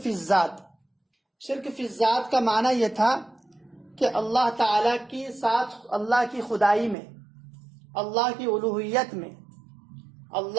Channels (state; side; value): drops out; left; at 7.0 s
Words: فی الذات۔ شرک فی الذات کا معنی یہ تھا کہ اللہ تعالیٰ کی ساتھ، اللہ کی خدائی میں، اللہ کی الوہیت میں،